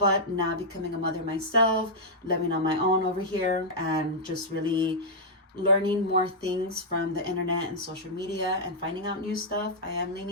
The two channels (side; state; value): both; normal; correlation -0.07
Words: now becoming a mother myself, living on my own over here, and just really learning more things from the internet and social media and finding out new stuff, I am